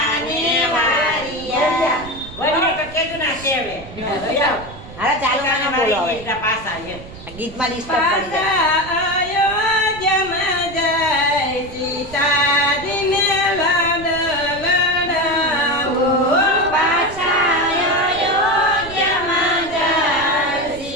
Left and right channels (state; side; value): noise; right; rumble, 16 dB below the sound